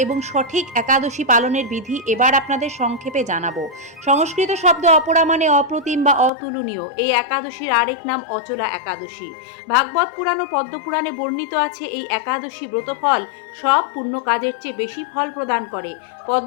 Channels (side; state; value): right; drops out; at 6.3 s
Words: এবং সঠিক একাদশী পালনের বিধি এবার আপনাদের সংক্ষেপে জানাবো। সংস্কৃত শব্দ অপরা মানে অপ্রতিম বা অতুলনীয়। এই একাদশীর আরেক নাম অচলা একাদশী। ভাগবত পুরাণ ও পদ্মপুরাণে বর্ণিত আছে এই একাদশী ব্রতফল সব পুণ্য কাজের চেয়ে বেশি ফল প্রদান করে।